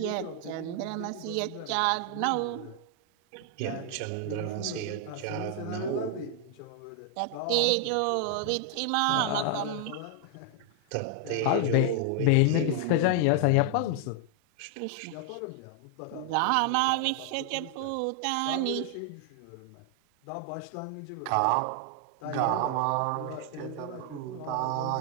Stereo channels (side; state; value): both; different; correlation 0.00